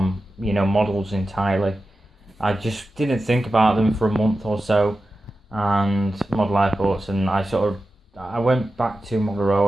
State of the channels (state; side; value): normal; both; correlation 0.93